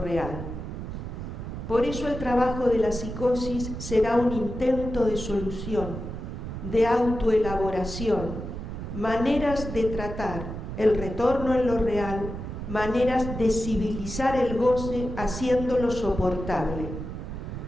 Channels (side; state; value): right; noise; rumble, 7 dB below the sound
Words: Por eso el trabajo de la psicosis será un intento de solución, de autoelaboración, maneras de tratar el retorno en lo real, maneras de civilizar el goce haciéndolo soportable.